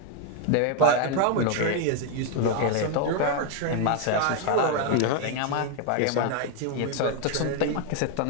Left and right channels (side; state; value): both; different; correlation 0.01